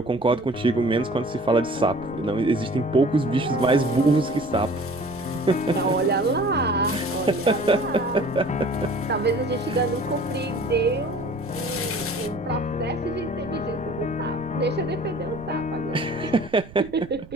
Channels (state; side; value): noise; right; rumble, 19 dB below the sound